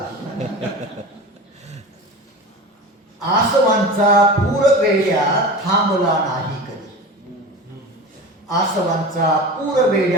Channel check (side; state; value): both; normal; correlation 0.32